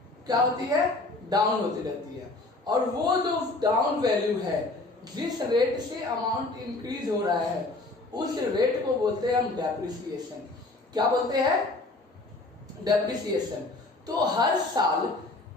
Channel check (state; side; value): quieter; right; 3.1 dB